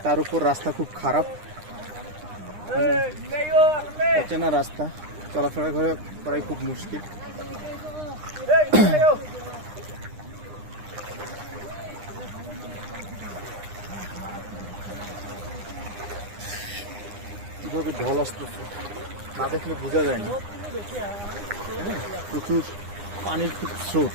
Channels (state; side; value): late; left; 9.8 ms